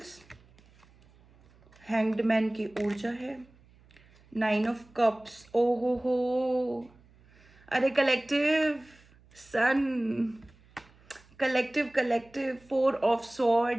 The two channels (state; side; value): noise; right; hum, 28 dB below the sound